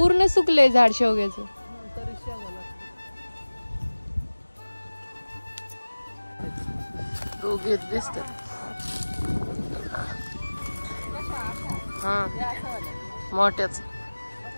सुकले झाड शेवग्याचं. दोघे दिसतात. हा मोठ्याच.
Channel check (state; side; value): inverted; both; correlation -1.00